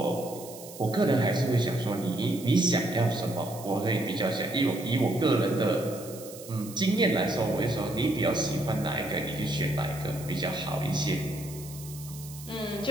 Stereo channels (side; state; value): right; noise; hiss, 16 dB below the sound